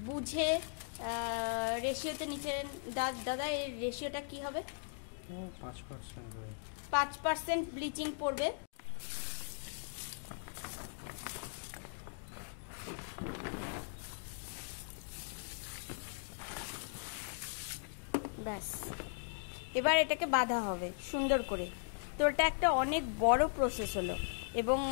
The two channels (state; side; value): silent; right; digital silence